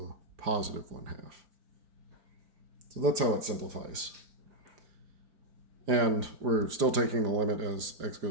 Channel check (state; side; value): late; left; 4.9 ms